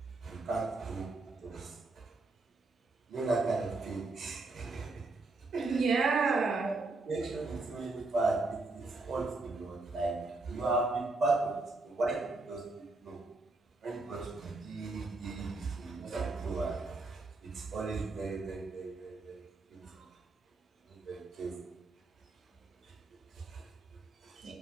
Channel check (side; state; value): left; quieter; 3.4 dB